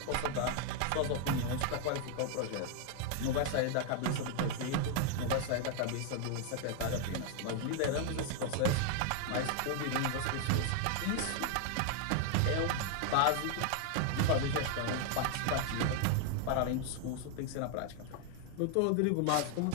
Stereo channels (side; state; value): both; different; correlation 0.00